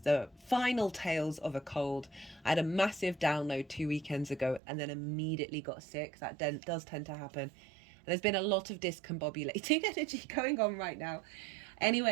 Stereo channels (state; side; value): drops out; left; at 4.6 s